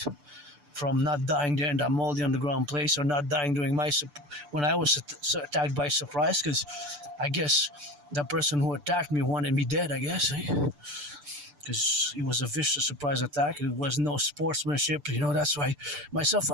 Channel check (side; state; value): left; late; 6.8 ms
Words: from, not dying there in that moldy underground place, or not dying during when I was attacked by surprise, because I guess the person who attacked me wanted me dead, I guess, because it was a vicious surprise attack. It was no sportsmanship, that's why myself,